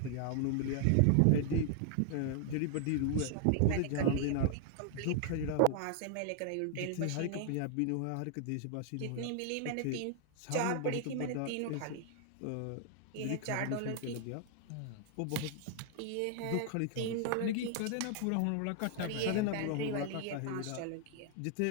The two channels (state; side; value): different; both; correlation 0.00